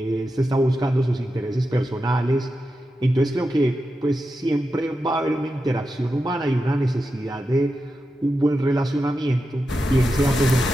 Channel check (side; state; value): both; normal; correlation 0.89